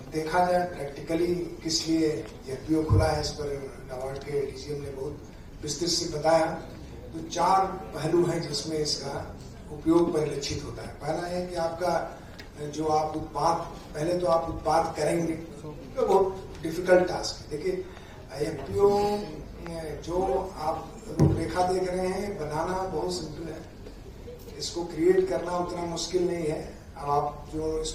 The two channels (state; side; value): identical; both; correlation 1.00